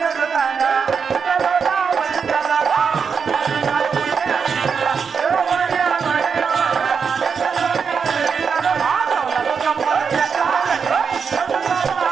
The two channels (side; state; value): left; quieter; 6.1 dB